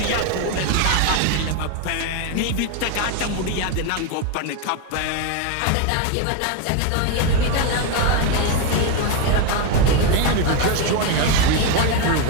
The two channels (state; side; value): different; both; correlation 0.01